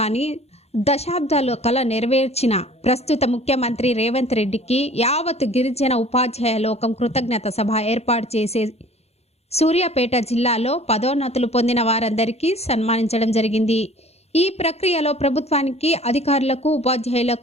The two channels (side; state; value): right; late; 0.31 ms